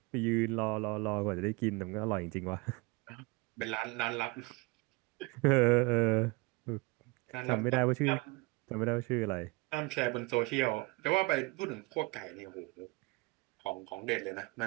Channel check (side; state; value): left; quieter; 25.7 dB